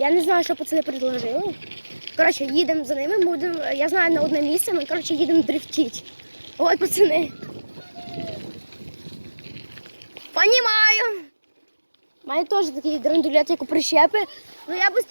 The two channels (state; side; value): inverted; both; correlation -1.00